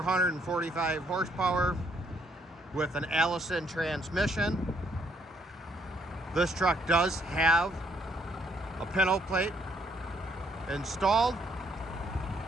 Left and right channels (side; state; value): both; normal; correlation 0.70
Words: horsepower with an Allison transmission. This truck does have a pintle plate installed.